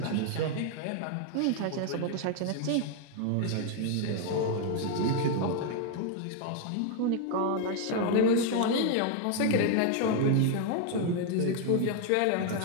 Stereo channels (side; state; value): both; different; correlation 0.00